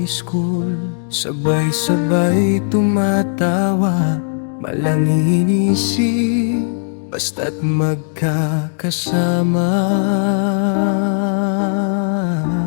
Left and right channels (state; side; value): silent; right; digital silence